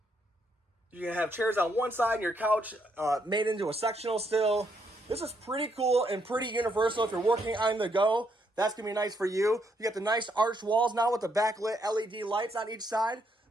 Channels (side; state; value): both; normal; correlation 0.75